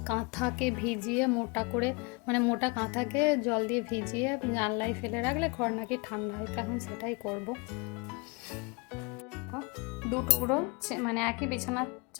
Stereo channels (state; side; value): quieter; right; 29.9 dB